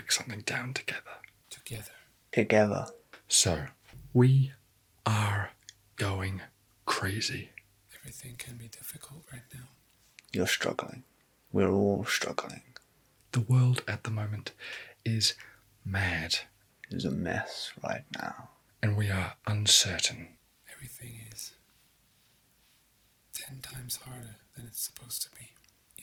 something down together. Together. So, we are going crazy. Everything can be difficult right now. You're struggling. We're all struggling. The world at the moment is mad. It's a mess right now. And we are uncertain. Everything is 10 times harder than it's supposed to be.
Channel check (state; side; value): identical; both; correlation 1.00